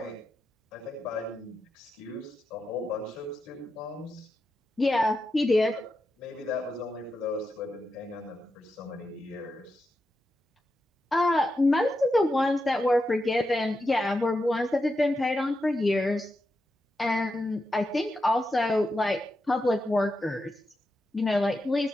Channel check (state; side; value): normal; both; correlation 0.88